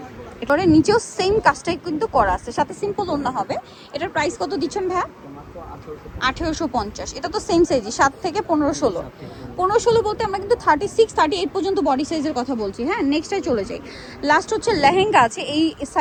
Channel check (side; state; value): both; identical; correlation 1.00